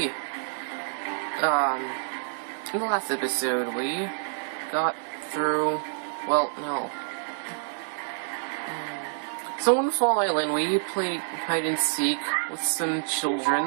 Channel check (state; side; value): silent; left; digital silence